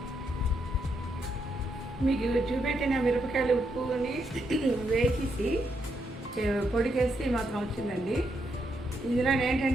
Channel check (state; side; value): normal; both; correlation 0.79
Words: మీకు చూపెట్టిన మిరపకాయలు ఉప్పుని వేసేసి పొడికేస్తే మాత్రం వచ్చిందండి. ఇందులో